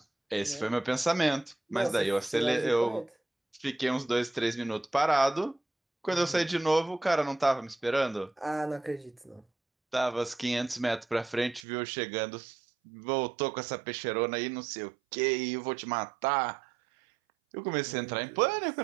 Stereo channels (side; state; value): left; drops out; at 11.7 s